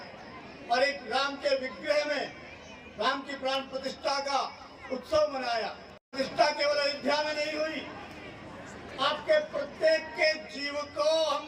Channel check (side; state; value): both; identical; correlation 1.00